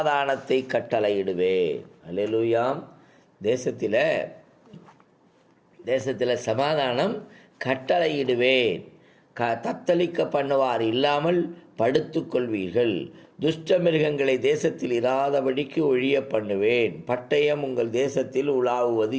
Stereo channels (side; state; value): both; identical; correlation 1.00